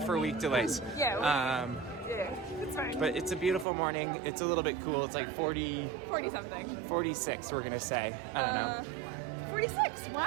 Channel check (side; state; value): left; drops out; at 3.7 s